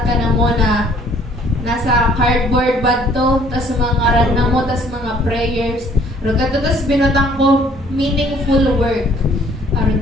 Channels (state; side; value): normal; both; correlation 0.59